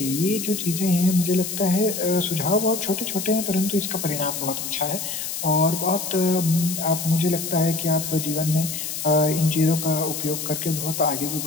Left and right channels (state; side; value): noise; left; hiss, 5 dB below the sound